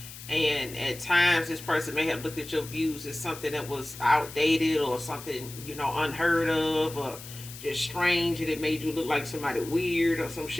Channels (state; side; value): noise; left; hiss, 14 dB below the sound